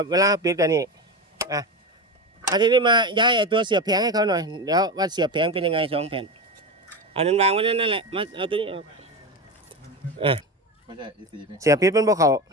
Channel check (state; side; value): normal; both; correlation 0.21